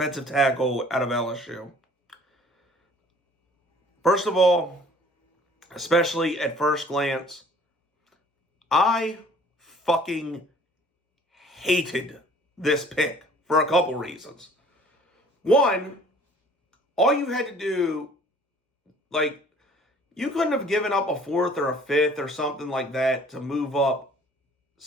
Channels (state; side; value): normal; both; correlation 0.53